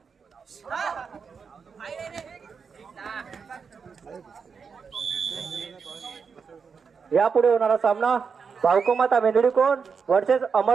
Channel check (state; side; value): quieter; left; 5.8 dB